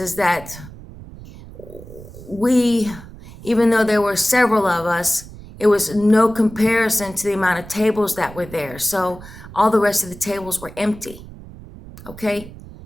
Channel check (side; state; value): right; noise; rumble, 17 dB below the sound